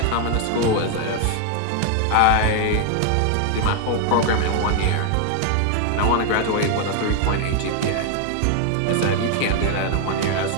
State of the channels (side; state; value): both; different; correlation 0.00